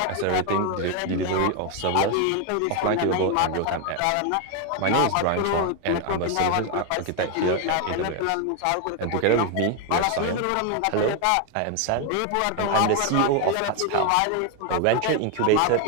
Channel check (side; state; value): both; different; correlation 0.01